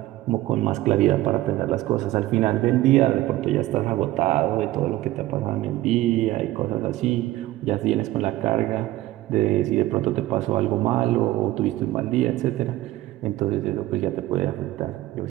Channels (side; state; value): left; quieter; 16.4 dB